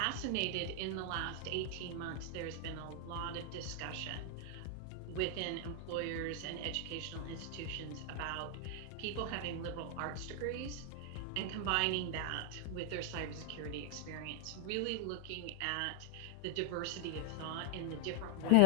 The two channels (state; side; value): different; both; correlation 0.00